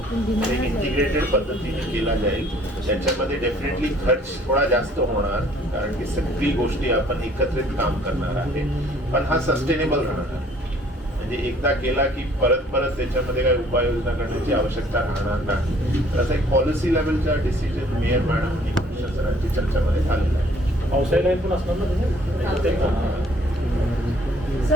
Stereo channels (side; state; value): both; normal; correlation 0.58